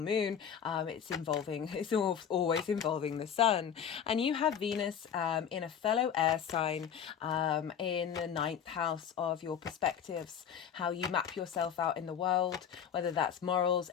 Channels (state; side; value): quieter; right; 8.3 dB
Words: it's always involving the sun. And you have Venus in a fellow air sign in the 9th house of your perspectives, how you map yourself out in the world, whether that's morals,